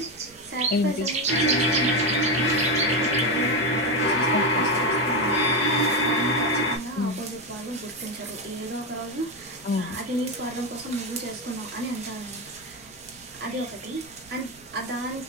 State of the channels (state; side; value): noise; right; rumble, 28 dB below the sound